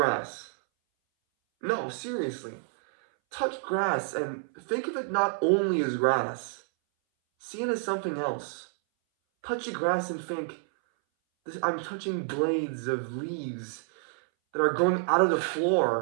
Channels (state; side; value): silent; left; 59 dB below the other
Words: No, seriously. Touch grass and think of it not only as grass. See it as something else. Touch the grass and think, I'm touching blades of leaves that are growing out of the